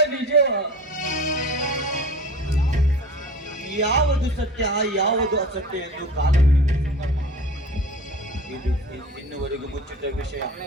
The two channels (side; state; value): both; normal; correlation 0.38